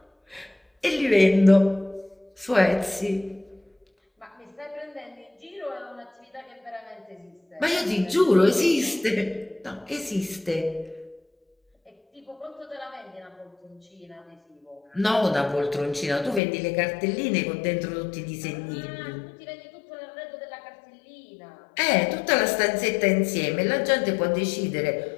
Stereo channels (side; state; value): right; drops out; at 16.4 s